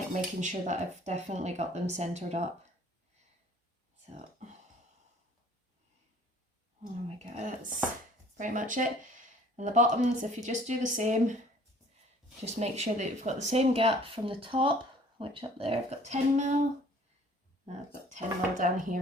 making sure that I've definitely got them centered up. So, oh my god, that's pretty much it. And the bottoms, if you just do the same, just make sure that you've got the same gap from the top, which up there I've got 10 mil. I've got 10 mil down here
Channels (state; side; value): normal; both; correlation 0.53